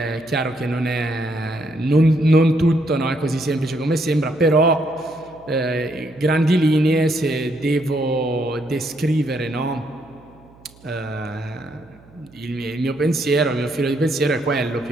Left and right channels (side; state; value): right; noise; hum, 26 dB below the sound